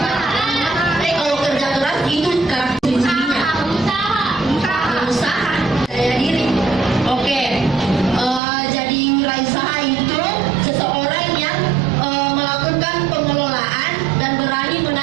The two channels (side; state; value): left; drops out; at 8.4 s